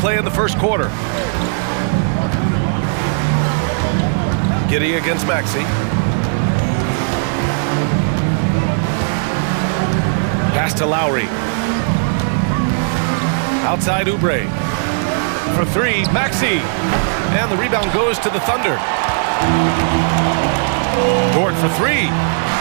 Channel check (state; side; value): silent; left; 65 dB below the other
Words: in the first quarter. Giddey against Maxey. Pass to Lowry. Outside Oubre. For 3, Maxey. And the rebound goes to the Thunder. Dort for 3.